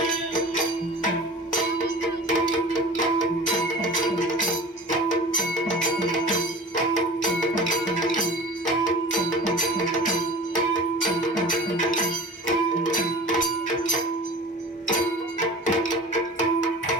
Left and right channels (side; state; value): both; normal; correlation 0.38